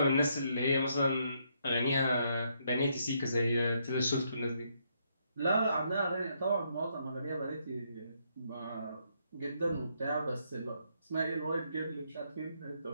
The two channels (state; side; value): inverted; both; correlation -0.74